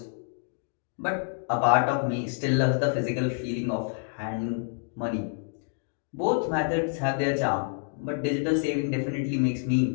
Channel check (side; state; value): right; silent; digital silence